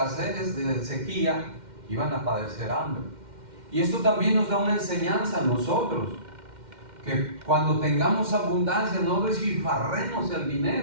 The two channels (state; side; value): late; left; 2.1 ms